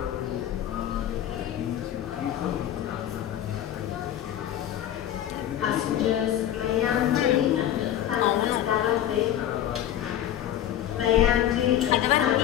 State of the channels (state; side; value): quieter; right; 11.4 dB